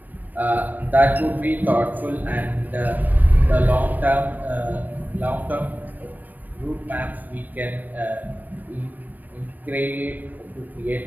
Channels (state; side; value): late; left; 0.087 ms